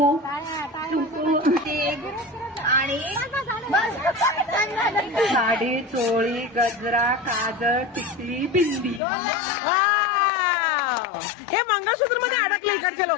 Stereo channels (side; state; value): right; drops out; at 9.0 s